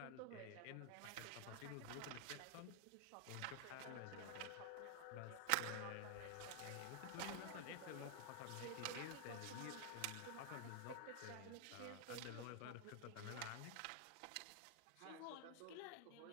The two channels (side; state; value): both; different; correlation 0.00